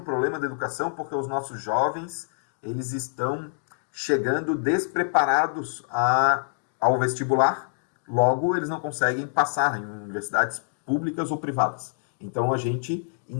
da educação porque os nossos jovens eles estão chegando despreparados ao vestibular, logo eles não conseguem passar em universidades públicas ou privadas. Então a gente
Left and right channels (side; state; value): right; silent; digital silence